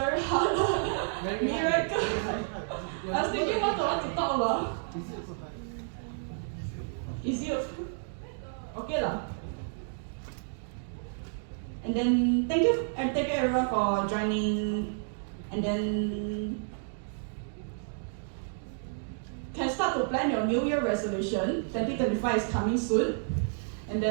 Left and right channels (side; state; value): left; silent; digital silence